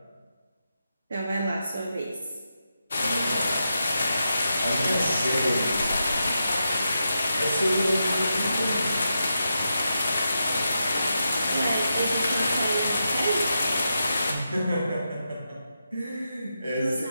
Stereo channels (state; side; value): inverted; both; correlation -0.87